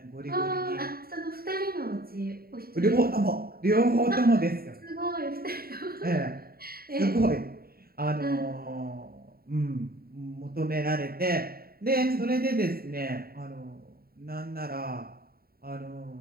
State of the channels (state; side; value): late; left; 0.44 ms